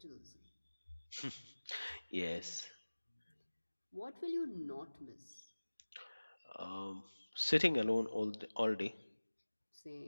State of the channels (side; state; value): both; inverted; correlation -1.00